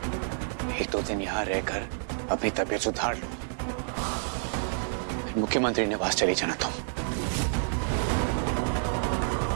एक दो दिन यहां रहकर अपनी तबीयत सुधार लो, मुख्यमंत्री निवास चली जाना तुम।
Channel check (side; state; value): left; silent; 59 dB below the other